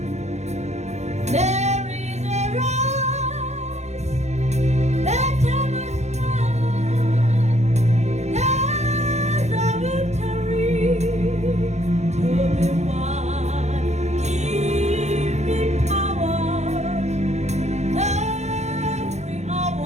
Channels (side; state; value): left; late; 0.33 ms